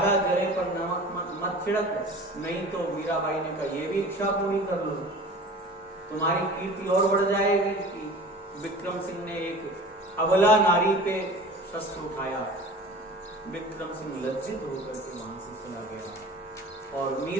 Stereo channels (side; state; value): both; normal; correlation 0.40